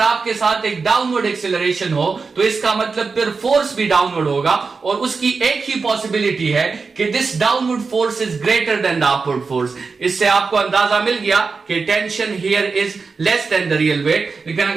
साथ एक डाउनवर्ड एक्सेलरेशन हो, तो इसका मतलब फिर फोर्स भी डाउनवर्ड होगा, और उसकी एक ही पॉसिबिलिटी है कि this downward force is greater than the upward force. इससे आपको अंदाजा मिल गया कि tension here is less than the real weight. लेकिन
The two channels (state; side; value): quieter; left; 4.6 dB